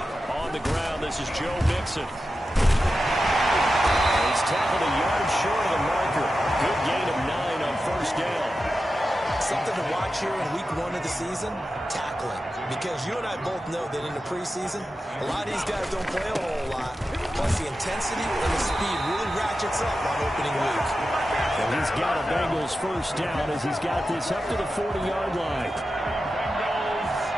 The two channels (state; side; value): normal; both; correlation 0.92